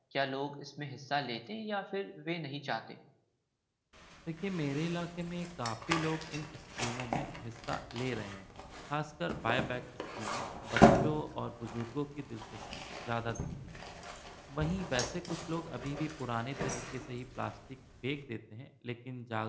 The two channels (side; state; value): both; identical; correlation 1.00